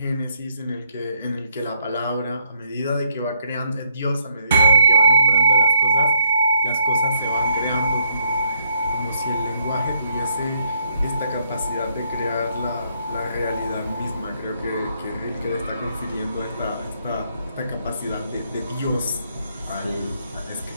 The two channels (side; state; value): both; inverted; correlation -0.72